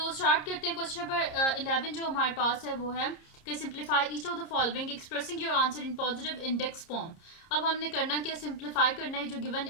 स्टार्ट करते हैं। क्वेश्चन नंबर 11 जो हमारे पास है वो है कि simplify each of the following expressing your answer in positive index form. अब हमने करना क्या, सिंप्लीफाई करना है। जो गिवन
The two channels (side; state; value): right; late; 30 ms